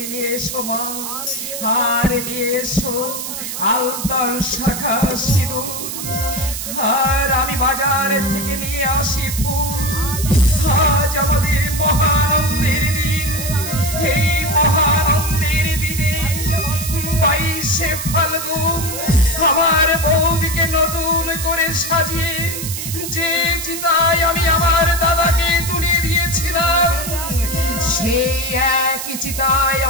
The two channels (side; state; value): right; noise; hiss, 6 dB below the sound